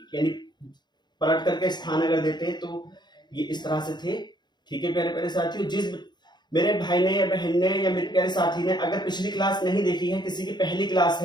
यानी पलट करके स्थान अगर देते हैं तो ये इस तरह से थे, ठीक है प्यारे प्यारे साथियों। जिस मेरे भाई ने या बहन ने या मेरे प्यारे साथी ने अगर पिछली क्लास नहीं देखी है, किसी की पहली क्लास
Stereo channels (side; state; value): right; late; 0.21 ms